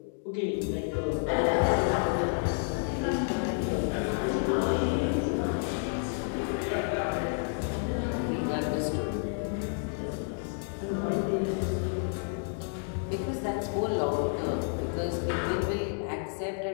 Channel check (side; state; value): right; silent; 58 dB below the other